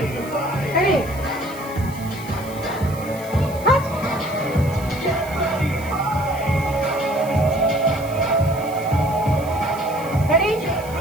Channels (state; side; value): noise; right; hiss, 18 dB below the sound